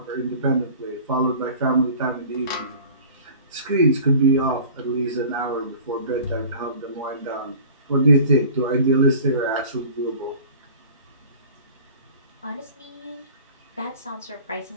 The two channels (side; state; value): both; inverted; correlation -0.44